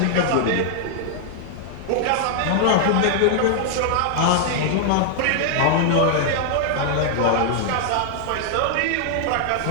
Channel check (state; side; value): different; both; correlation -0.01